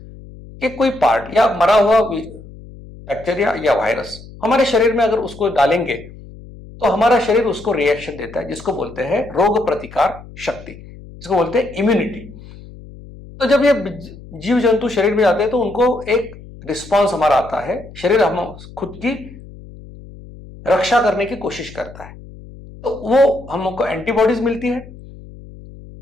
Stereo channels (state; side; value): noise; left; hum, 18 dB below the sound